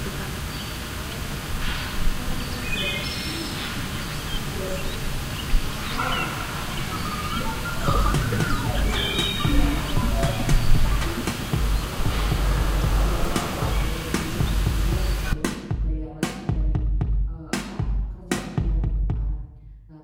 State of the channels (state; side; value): identical; both; correlation 1.00